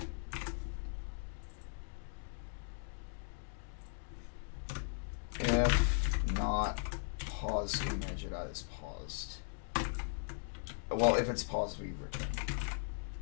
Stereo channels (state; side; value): silent; right; digital silence